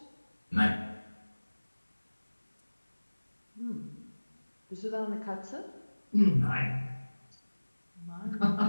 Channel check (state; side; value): inverted; both; correlation -1.00